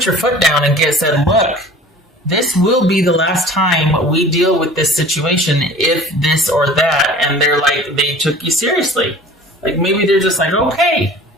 your foot down and said, look, this will be the last time we deal with this situation if this or that. And they're like, they took you seriously. Like maybe they're just like, okay,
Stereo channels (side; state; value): both; normal; correlation 0.44